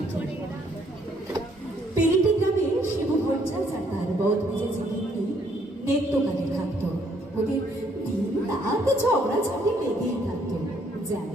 পেরিটি গ্রামে শিবু ভট্টাচার্য আর তার বদ মেজেছে কিন্তু নেত্যকালে থাকতো। ওদের দিন রাত ঝগড়াঝাটি লেগেই থাকতো,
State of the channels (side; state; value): both; normal; correlation 0.67